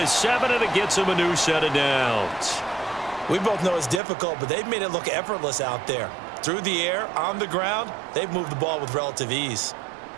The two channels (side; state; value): left; drops out; at 4.0 s